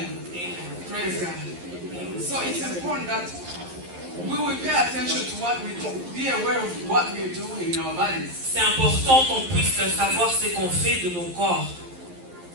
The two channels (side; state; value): left; late; 11 ms